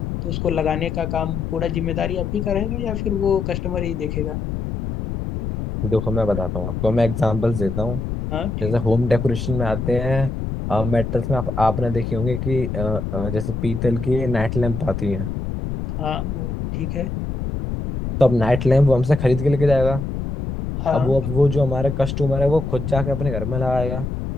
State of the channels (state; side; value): noise; left; rumble, 4 dB below the sound